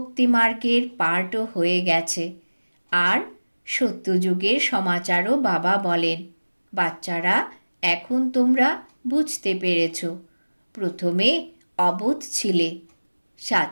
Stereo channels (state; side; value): inverted; both; correlation -1.00